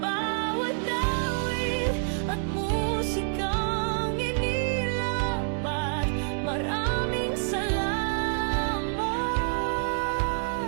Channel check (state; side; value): silent; left; digital silence